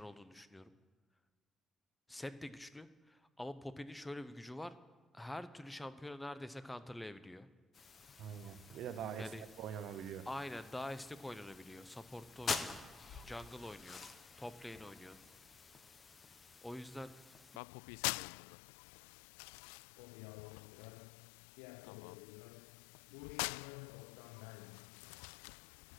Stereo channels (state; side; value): drops out; right; at 17.6 s